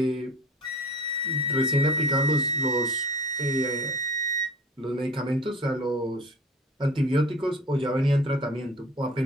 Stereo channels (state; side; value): normal; both; correlation 0.42